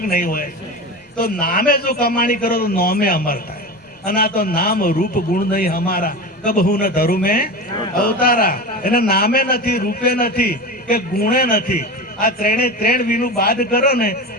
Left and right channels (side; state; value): both; normal; correlation 0.26